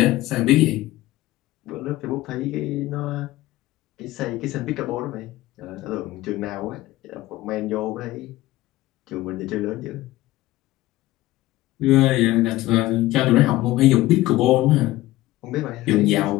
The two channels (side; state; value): right; quieter; 16.9 dB